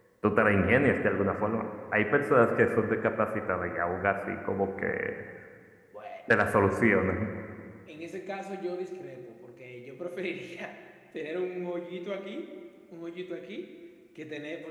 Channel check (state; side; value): identical; both; correlation 1.00